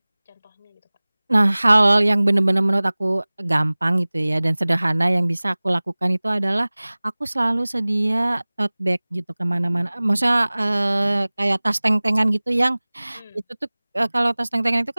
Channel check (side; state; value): both; inverted; correlation -1.00